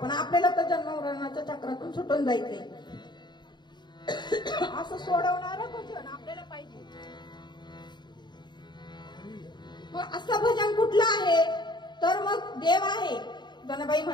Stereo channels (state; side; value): late; right; 0.21 ms